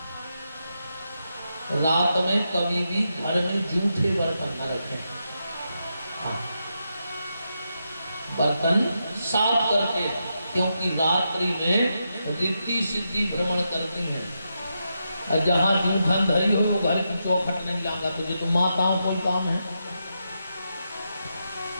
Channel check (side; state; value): both; inverted; correlation -0.85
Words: रात में कभी भी घर में जूठे बर्तन न रखें। हाँ, बर्तन साफ करके, क्योंकि रात्रि में रिद्धि सिद्धि भ्रमण करती हैं। और जहां जूठन धरी हो वो घर की चौखट नहीं लांगा, तुझे तो माताओं को काम है।